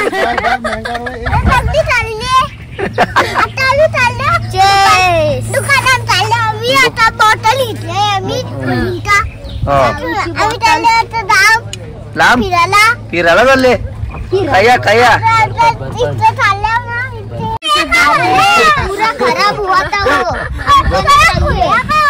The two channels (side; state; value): both; identical; correlation 1.00